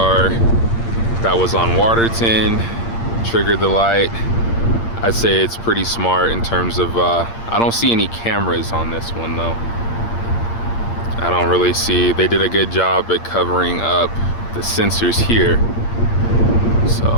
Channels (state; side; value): late; right; 8.7 ms